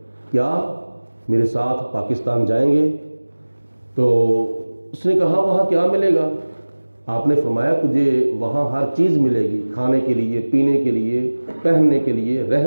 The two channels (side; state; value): both; inverted; correlation -1.00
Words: کیا میرے ساتھ پاکستان جائیں گے؟ تو اس نے کہا وہاں کیا ملے گا؟ آپ نے فرمایا تجھے وہاں ہر چیز ملے گی، کھانے کے لیے، پینے کے لیے، پہننے کے لیے،